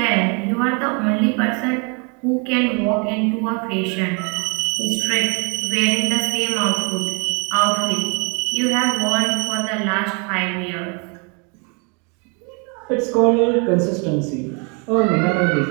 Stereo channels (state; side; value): quieter; left; 34.6 dB